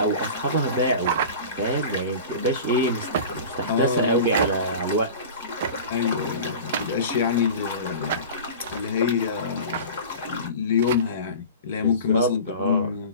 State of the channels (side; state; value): both; inverted; correlation -0.35